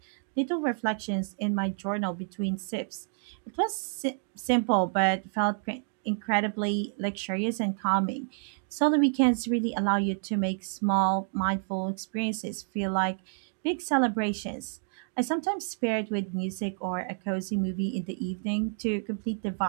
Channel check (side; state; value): left; silent; 58 dB below the other